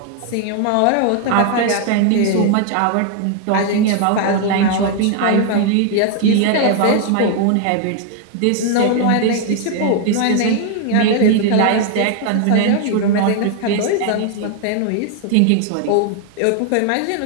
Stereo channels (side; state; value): both; different; correlation 0.00